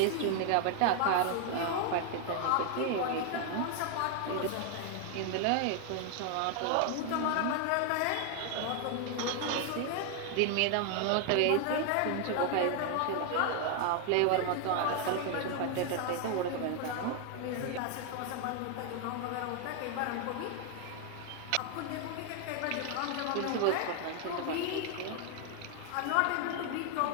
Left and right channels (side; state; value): both; different; correlation 0.00